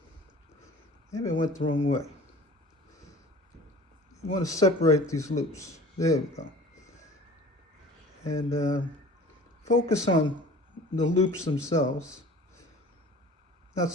Maybe I went the wrong way. You want to separate these loops. There we go. And focus on the loops themselves, not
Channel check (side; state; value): both; normal; correlation 0.44